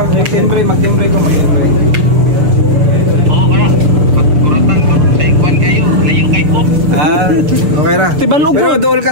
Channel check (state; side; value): late; left; 6.6 ms